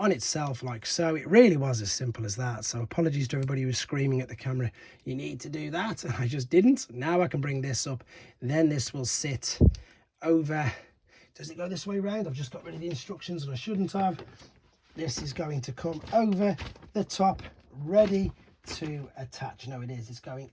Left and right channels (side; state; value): both; identical; correlation 1.00